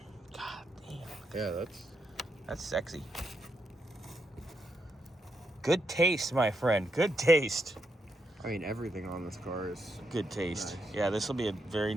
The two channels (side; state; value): both; normal; correlation 0.81